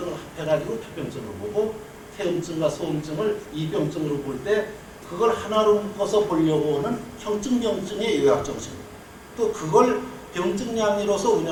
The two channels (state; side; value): identical; both; correlation 1.00